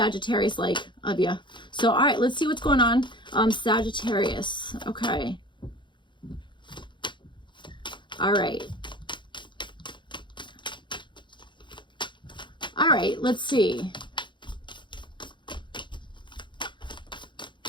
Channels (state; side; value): late; right; 0.23 ms